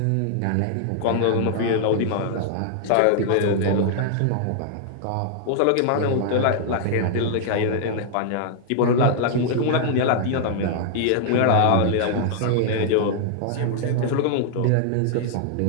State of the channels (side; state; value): both; different; correlation -0.01